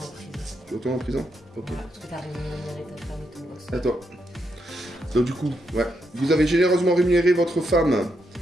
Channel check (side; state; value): both; normal; correlation 0.81